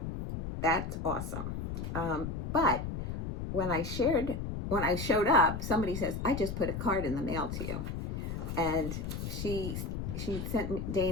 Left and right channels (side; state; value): left; noise; rumble, 4 dB below the sound